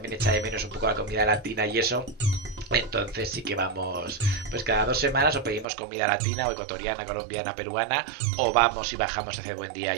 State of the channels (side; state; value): left; drops out; at 5.7 s